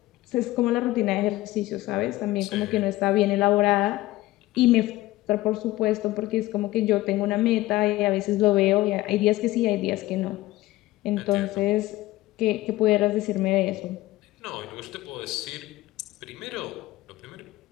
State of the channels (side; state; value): right; quieter; 17.4 dB